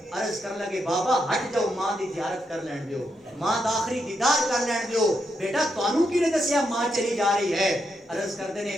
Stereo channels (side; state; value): both; normal; correlation 0.82